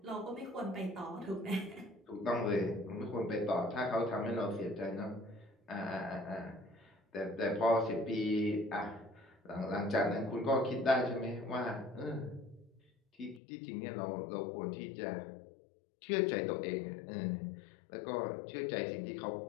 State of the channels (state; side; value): drops out; right; at 13.4 s